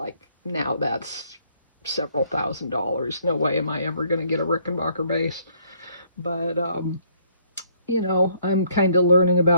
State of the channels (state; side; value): inverted; both; correlation -0.66